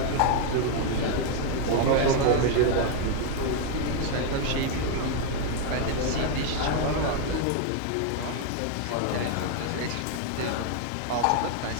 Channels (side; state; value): both; different; correlation 0.01